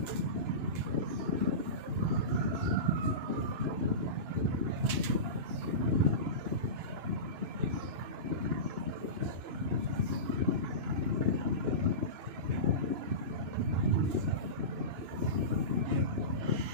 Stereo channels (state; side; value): late; left; 2.9 ms